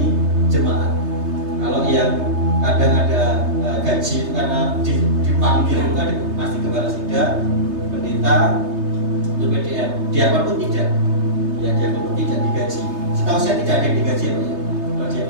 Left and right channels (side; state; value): left; late; 3.3 ms